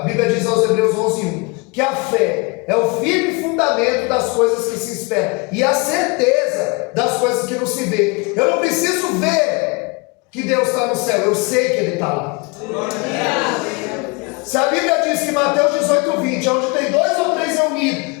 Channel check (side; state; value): right; quieter; 28.9 dB